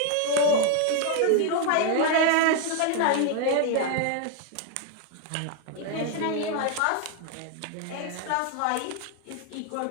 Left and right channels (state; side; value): different; both; correlation 0.00